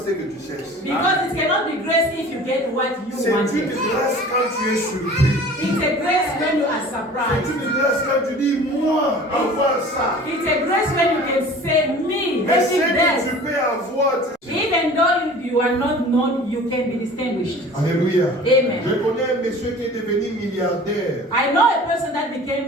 que tu cherches. Because it cannot be grace if you get what you C'est want. une grâce quand tu es surpris. It's a grace when you are C'est surprised. une grâce quand tu dis, moi, avoir ça. It's a grace when you can say, me, Mais ce having que that. tu peux avoir, Even though you are not known, you can be distinguished. Alléluia. Amen. Je connais un monsieur qui est devenu milliardaire. I know a person that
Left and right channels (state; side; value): normal; both; correlation 0.43